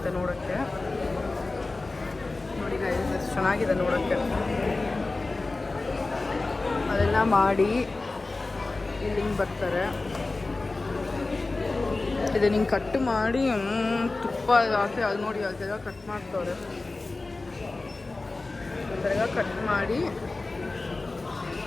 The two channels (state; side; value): quieter; right; 3.3 dB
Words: ನೋಡೋಕ್ಕೆ. ನೋಡಿ ಗೈಸ್ ಎಷ್ಟು ಚೆನ್ನಾಗಿದೆ ನೋಡೋಕ್ಕೆ. ಅದೆಲ್ಲ ಮಾಡಿ ಇಲ್ಲಿ ಹಿಂಗೆ ಬರ್ತಾರೆ. ಇದು ಹಿಂಗೆ ಕಟ್ ಮಾಡಿ ತುಪ್ಪ ಹಾಕಿ ಅದು ನೋಡಿ ಅದೆಲ್ಲ ಕಟ್ ಮಾಡ್ತವ್ರೆ. ಅದೆಲ್ಲ ಕಟ್ ಮಾಡಿ